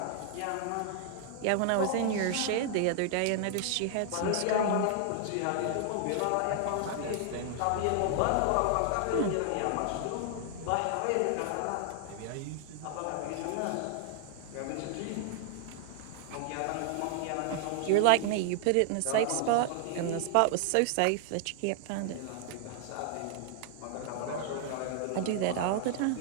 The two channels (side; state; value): both; different; correlation 0.00